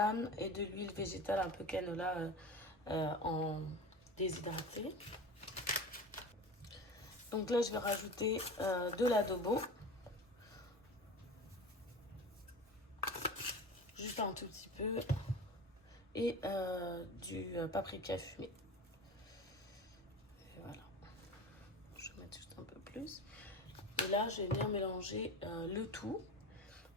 et de l'huile végétale un peu canola en déshydraté. Donc là, je vais rajouter de l'adobo. Juste un tout petit peu. Et du paprika fumé. Et voilà. Je vais mettre juste un peu plus. Et là, je vais venir mélanger le tout.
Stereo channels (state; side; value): normal; both; correlation 0.32